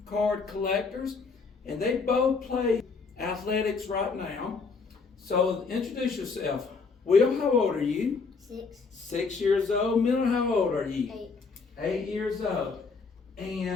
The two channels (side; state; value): right; quieter; 4.7 dB